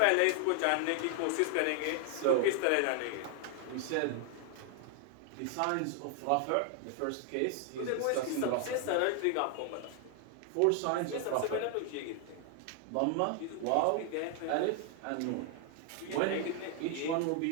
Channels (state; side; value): different; both; correlation 0.00